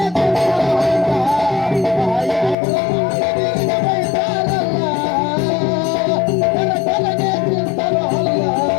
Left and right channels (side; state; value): right; drops out; at 2.6 s